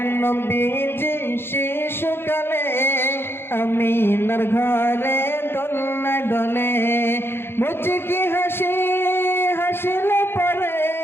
নবীজি শিশুকালে আমিনার ঘরে দোলে দোলে মুচকি হাসি হাসলে পরে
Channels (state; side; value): late; right; 0.11 ms